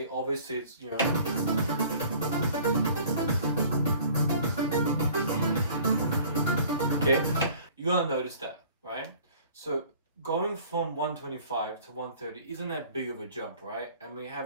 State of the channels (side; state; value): both; inverted; correlation -0.50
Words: obviously it's, okay, you're gonna notice that, right? So going from 125 to 130 isn't that big of a jump, right? And we